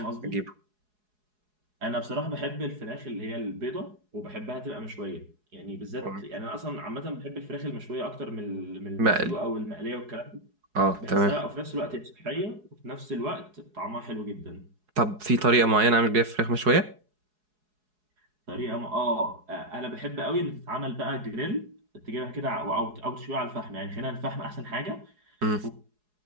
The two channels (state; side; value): late; left; 4.7 ms